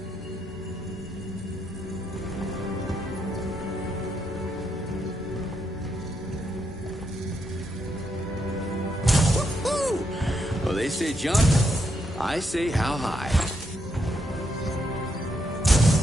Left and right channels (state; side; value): normal; both; correlation 0.79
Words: Woo-hoo! Well, they say jump, I say how high.